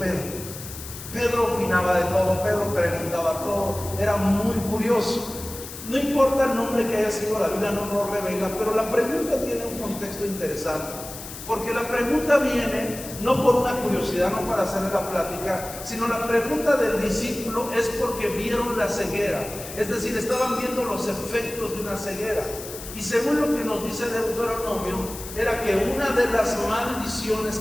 Pedro opinaba de todo, Pedro preguntaba todo, era muy curioso. No importa el nombre que haya sido, la Biblia no nos revela, pero la pregunta tiene un contexto interesante, porque la pregunta viene no por una curiosidad, no para hacerle la plática, sino la pregunta del discípulo es porque vieron la ceguera, es decir, estaban viendo los efectos de una ceguera. Y según lo que nos dice Deuteronomio, era que una de las maldiciones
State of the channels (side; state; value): left; noise; hiss, 12 dB below the sound